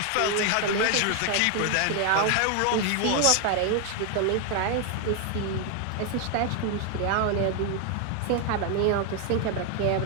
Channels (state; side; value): different; both; correlation 0.01